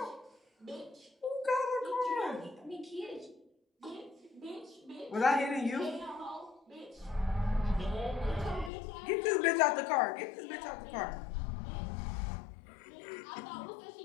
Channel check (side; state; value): right; drops out; at 8.7 s